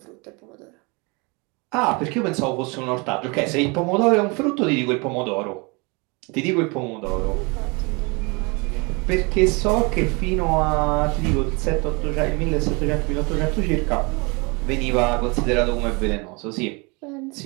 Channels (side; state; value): left; quieter; 28.9 dB